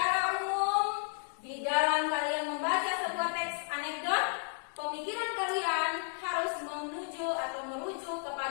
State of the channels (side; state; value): right; silent; digital silence